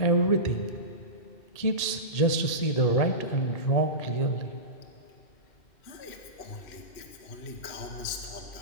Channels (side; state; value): right; late; 1.8 ms